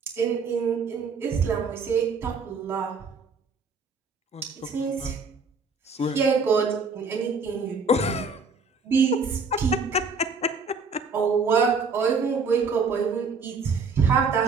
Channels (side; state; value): left; quieter; 4.4 dB